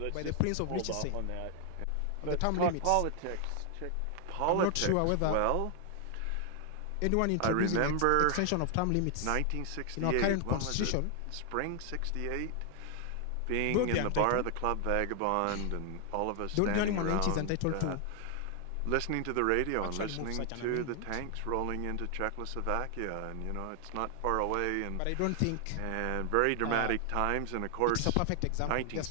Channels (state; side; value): different; both; correlation 0.00